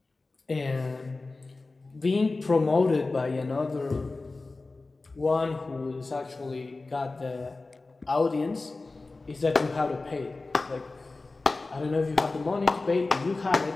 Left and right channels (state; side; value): quieter; right; 3.5 dB